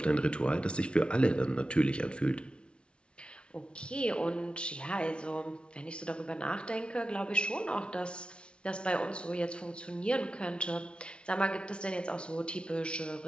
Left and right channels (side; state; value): right; late; 0.058 ms